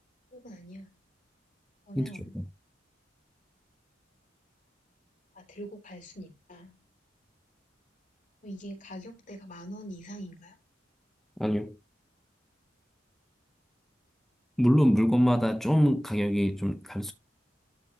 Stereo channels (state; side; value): normal; both; correlation 0.98